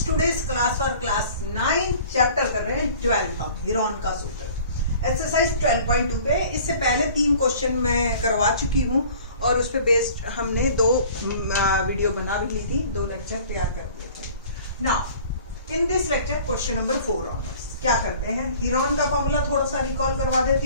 today's class for class 9 chapter कर रहे हैं 12 हम हीरोन का सूत्र एक्सरसाइज 12.2 पे। इससे पहले 3 क्वेश्चन मैं करवा चुकी हूँ और उस पे बेस्ड हमने 2 वीडियो बना भी ली थी, 2 लेक्चर तैयार कर दिए थे। Now in this lecture question number 4 onwards क्या करते हैं, हीरोन का फॉर्मूला थोड़ा सा रिकॉल करवा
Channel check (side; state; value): both; inverted; correlation -0.48